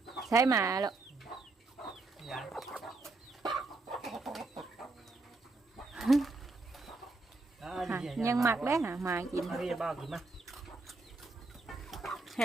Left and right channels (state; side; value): quieter; left; 3.4 dB